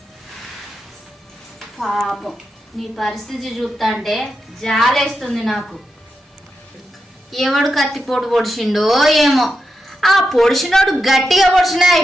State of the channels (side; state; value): both; normal; correlation 0.87